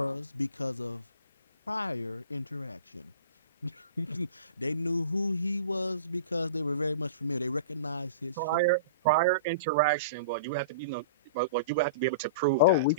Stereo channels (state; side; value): inverted; both; correlation -0.37